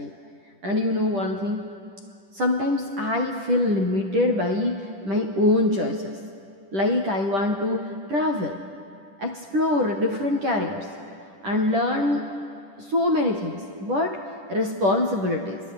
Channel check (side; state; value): left; late; 10 ms